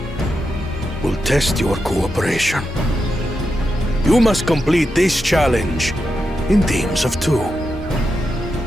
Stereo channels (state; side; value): normal; both; correlation 0.87